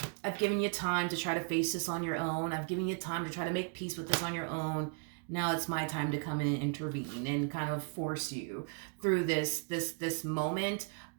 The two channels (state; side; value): quieter; left; 39.5 dB